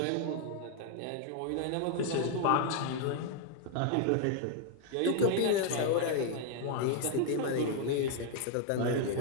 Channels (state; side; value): different; both; correlation 0.00